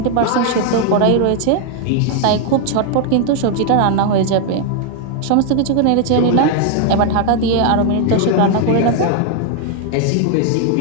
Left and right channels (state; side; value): different; both; correlation 0.00